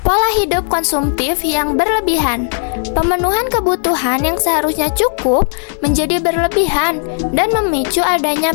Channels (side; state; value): right; silent; 58 dB below the other